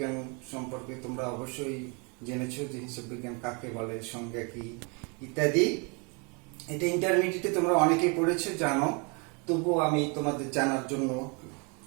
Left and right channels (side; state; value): left; quieter; 32.6 dB